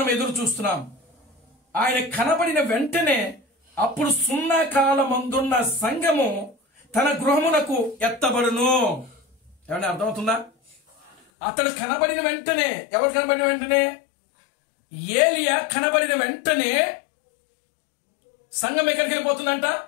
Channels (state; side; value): drops out; right; at 11.2 s